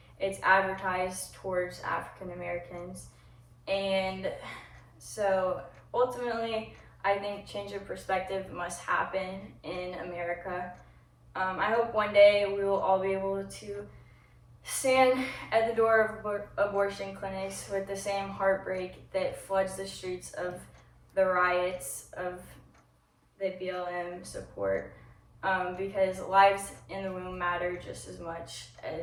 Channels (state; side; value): identical; both; correlation 1.00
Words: it's advertised towards African Americans. And so ultimately, I think change of perspective must happen in America. I hope one day we will all be able to stand at the door of abortion clinics with the same heartbreak that floods the streets of the riots of the BLM support, because lives in the womb matter. matter just as much